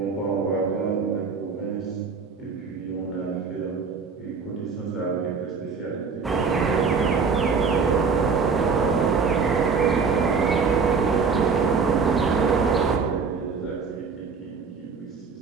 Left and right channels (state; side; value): quieter; left; 5.2 dB